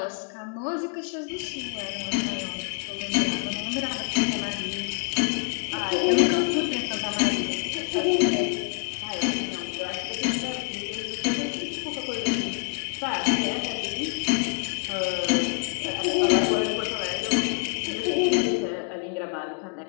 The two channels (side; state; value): right; quieter; 38.6 dB